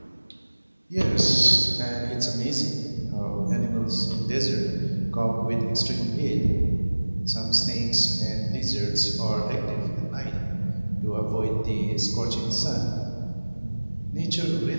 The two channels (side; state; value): both; inverted; correlation -1.00